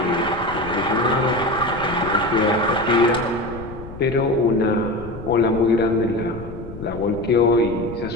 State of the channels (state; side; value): noise; left; rumble, 14 dB below the sound